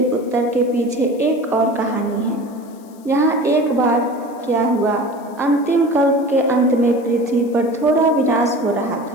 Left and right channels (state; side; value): noise; left; hiss, 28 dB below the sound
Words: उत्तर के पीछे एक और कहानी है। यहाँ एक बार क्या हुआ, अंतिम कल्प के अंत में पृथ्वी पर थोड़ा विनाश हो रहा